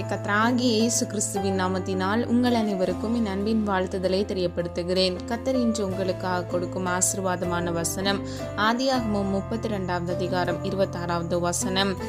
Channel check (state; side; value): identical; both; correlation 1.00